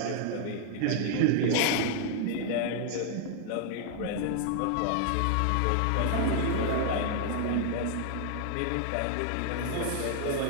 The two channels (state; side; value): different; both; correlation 0.00